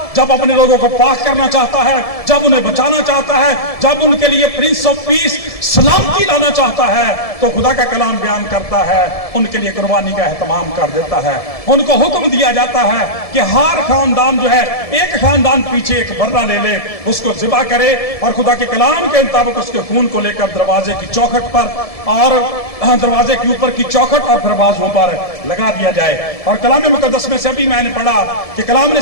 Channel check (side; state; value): right; late; 1.7 ms